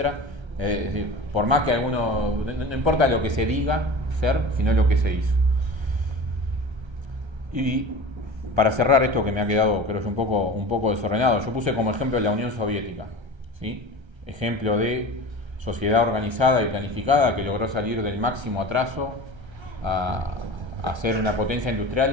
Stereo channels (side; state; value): left; late; 1.3 ms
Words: Es decir, por más que alguno, no importa lo que se diga ser, sino lo que se hizo. Y para cerrar esto que me ha quedado, creo yo, un poco desordenado, yo puse como ejemplo la Unión Soviética, ¿sí? Ejemplo de sociedad organizada y planificada que logró salir del máximo atraso a ser una potencia